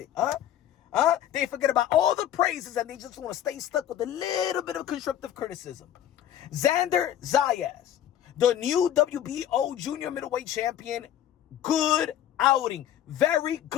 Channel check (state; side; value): quieter; right; 11.2 dB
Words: They forget about all the praises and they just want to stay stuck with a little bit of constructive criticism. Xander Zayas, the new WBO Junior Middleweight Champion, good outing. Very